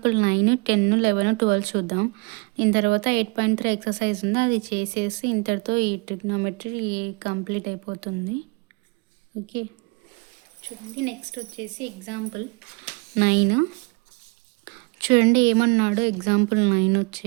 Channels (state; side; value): quieter; left; 29.8 dB